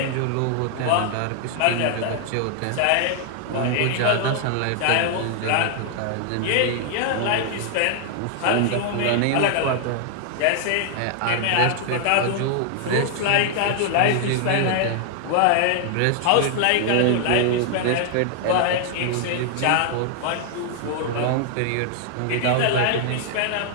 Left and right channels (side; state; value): both; different; correlation 0.00